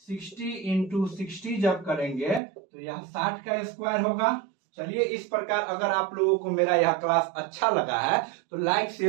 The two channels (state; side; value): drops out; left; at 2.4 s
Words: 60 इंटू 60 जब करेंगे तो यह 60 का स्क्वायर होगा। चलिए, इस प्रकार अगर आप लोगों को मेरा यह क्लास अच्छा लगा है तो लाइक